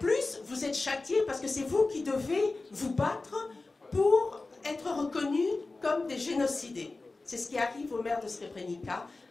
vous êtes châtiés parce que c'est vous qui devez vous battre pour être reconnus comme des génocidés. C'est ce qui arrive au maire de Srebrenica,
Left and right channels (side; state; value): right; quieter; 3.4 dB